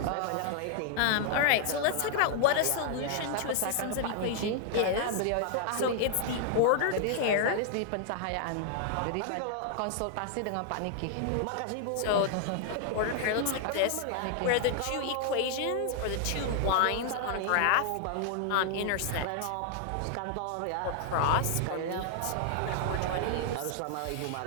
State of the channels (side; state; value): both; different; correlation 0.00